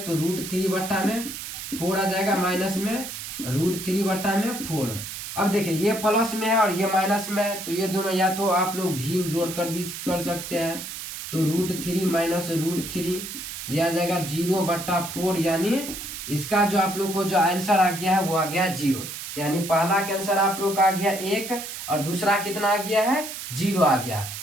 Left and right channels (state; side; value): noise; right; hiss, 8 dB below the sound